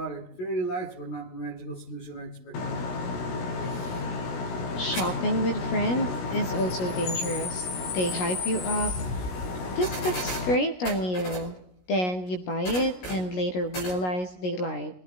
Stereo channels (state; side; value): late; right; 16 ms